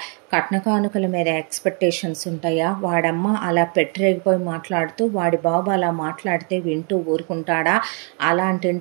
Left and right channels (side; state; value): left; quieter; 37.7 dB